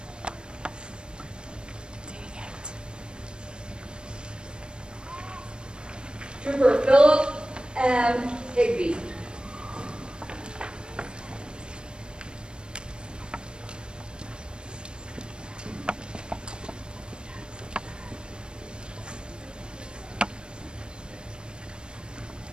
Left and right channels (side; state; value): left; late; 0.053 ms